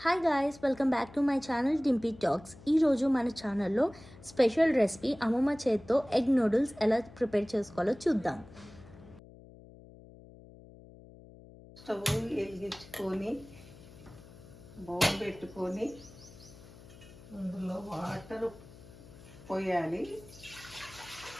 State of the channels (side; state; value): left; noise; hum, 20 dB below the sound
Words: Hi guys, welcome back to my channel Dimpy talks. ఈరోజు మన ఛానల్లో స్పెషల్ రెసిపీ అమ్మమ్మ చేత్తో ఎగ్ నూడిల్స్ ఎలా ప్రిపేర్ చేసుకోవాలో చూద్దాం. స్టవ్ వెలిగించుకొని బౌల్ పెట్టుకొని అందులో వాటర్ పోయాలి.